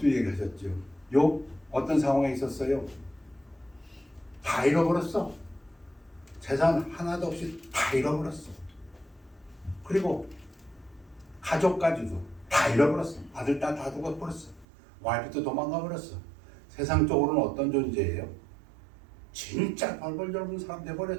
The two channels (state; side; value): drops out; left; at 14.7 s